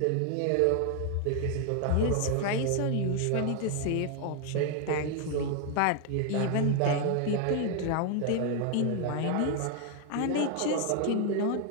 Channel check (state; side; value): different; both; correlation 0.00